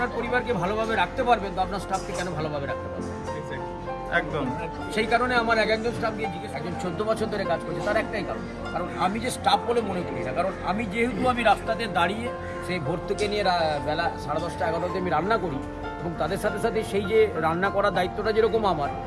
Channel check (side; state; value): both; identical; correlation 1.00